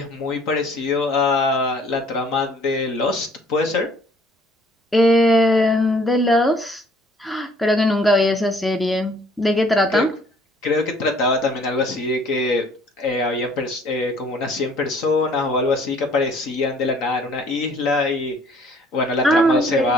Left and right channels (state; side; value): normal; both; correlation 0.58